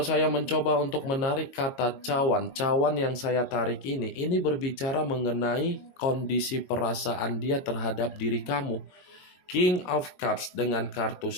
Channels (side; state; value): right; late; 22 ms